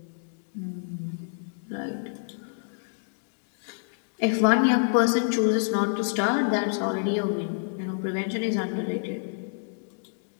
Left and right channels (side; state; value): right; silent; digital silence